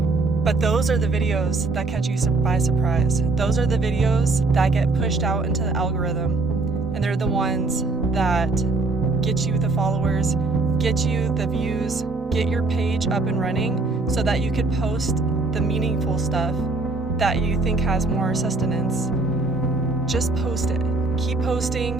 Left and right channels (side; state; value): left; quieter; 3.4 dB